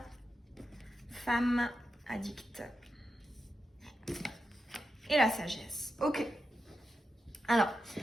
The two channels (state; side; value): normal; both; correlation 0.89